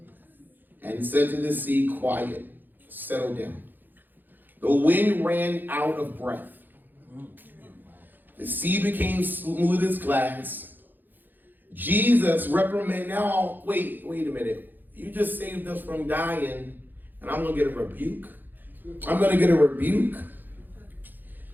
and said to the sea, quiet, settle down. The wind ran out of breath. The sea became smooth as glass. Jesus reprimanded. Now, wait a minute. You just saved us from dying, and I'm going to get a rebuke. I'm going to get a rebuke.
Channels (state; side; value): late; left; 0.089 ms